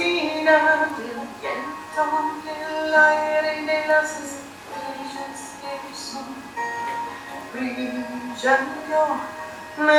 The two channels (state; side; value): identical; both; correlation 1.00